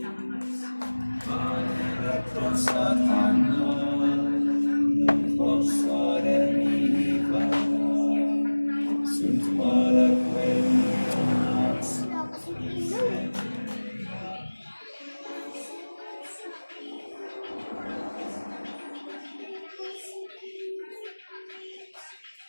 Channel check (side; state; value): both; inverted; correlation -1.00